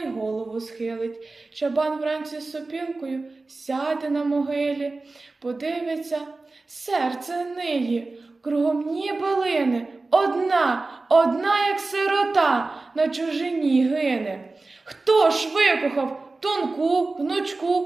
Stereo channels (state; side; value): quieter; left; 3.5 dB